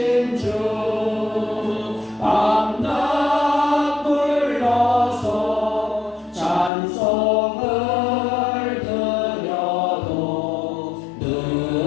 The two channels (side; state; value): right; drops out; at 6.7 s